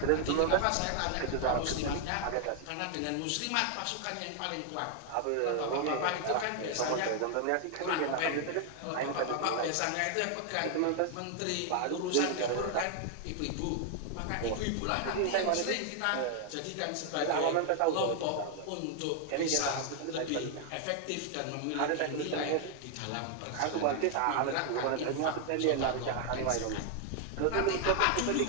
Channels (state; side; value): different; both; correlation 0.00